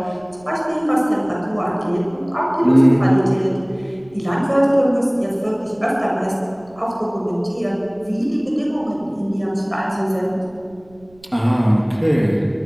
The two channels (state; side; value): noise; right; rumble, 28 dB below the sound